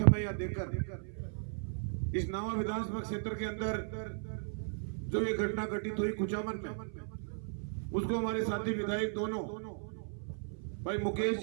यहाँ देकर इस नावा विधानसभा क्षेत्र के अंदर जो ये घटना घटित हुई कुचामन में, उसको हमारे साथी विधायक दोनों भाई मुकेश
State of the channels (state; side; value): silent; left; 54 dB below the other